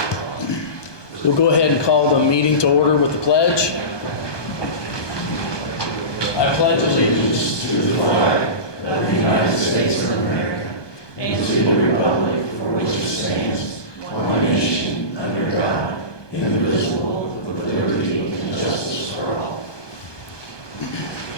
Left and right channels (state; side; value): late; right; 1.2 ms